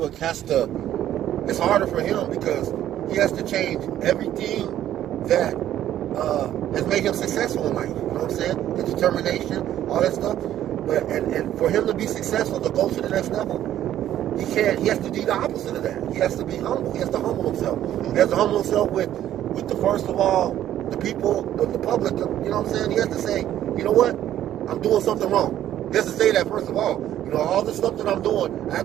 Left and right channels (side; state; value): left; quieter; 11.9 dB